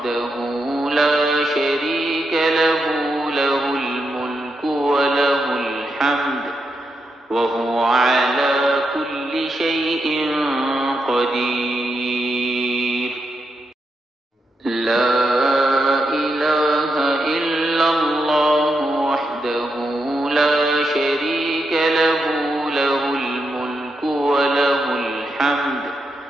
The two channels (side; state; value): both; normal; correlation 0.84